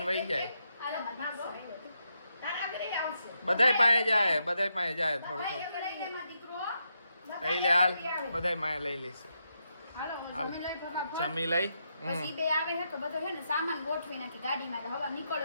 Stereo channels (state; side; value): inverted; both; correlation -0.82